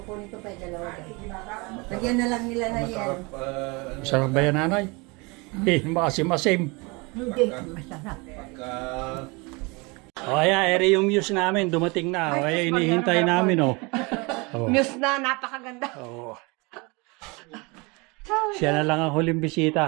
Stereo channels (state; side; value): quieter; left; 27.4 dB